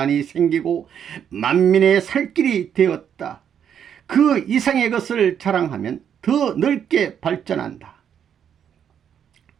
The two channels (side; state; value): left; quieter; 8.6 dB